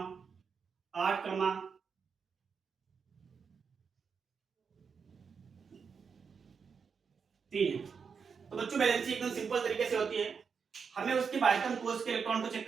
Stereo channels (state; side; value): quieter; left; 6.0 dB